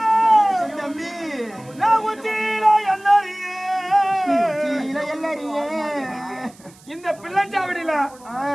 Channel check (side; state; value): right; noise; hiss, 25 dB below the sound